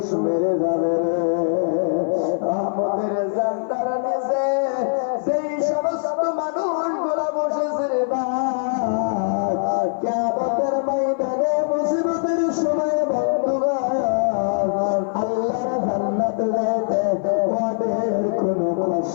মেরে যাবে আমাদের জান্নার নিচে সেই সমস্ত মানুষগুলা বসেছে রে ভাই, কিয়ামতের ময়দানে মুসিবতের সময় বন্ধুগণ আল্লাহর জান্নাতে যেতে ওদের কোনো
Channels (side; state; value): right; silent; 56 dB below the other